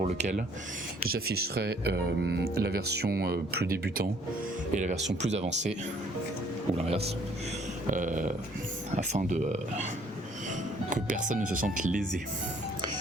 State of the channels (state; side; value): normal; both; correlation 0.61